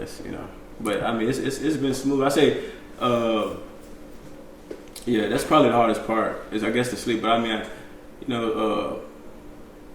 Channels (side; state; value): both; identical; correlation 1.00